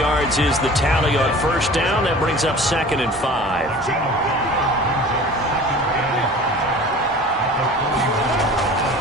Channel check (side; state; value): both; normal; correlation 0.42